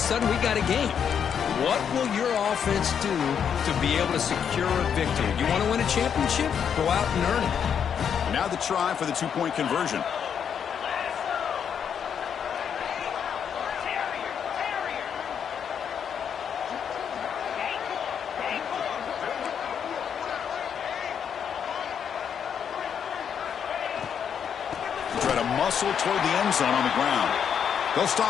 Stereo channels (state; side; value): quieter; right; 7.8 dB